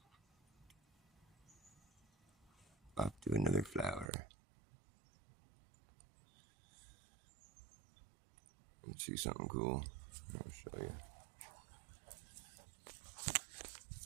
Off to another flower. Let's see something cool. I'll show you.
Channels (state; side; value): drops out; left; at 4.1 s